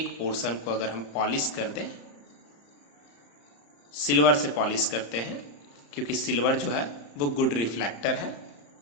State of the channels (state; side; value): late; right; 35 ms